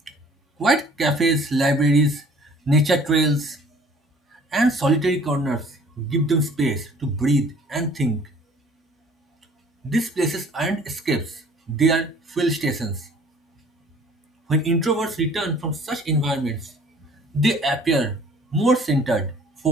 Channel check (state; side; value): normal; both; correlation 0.53